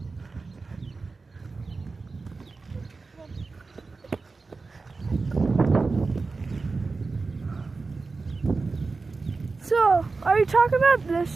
So, are you talking about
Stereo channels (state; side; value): quieter; left; 4.0 dB